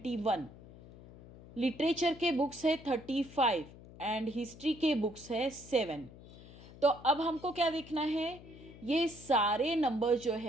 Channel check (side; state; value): left; noise; hum, 19 dB below the sound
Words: लिटरेचर के बुक्स है 35 एंड हिस्ट्री के बुक्स है 7। तो अब हमको क्या देखना है, ये सारे नंबर जो